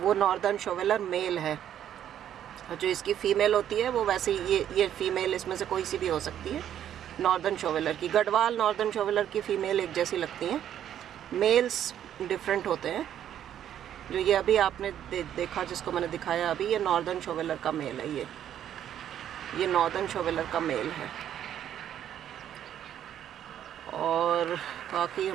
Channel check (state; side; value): quieter; left; 10.4 dB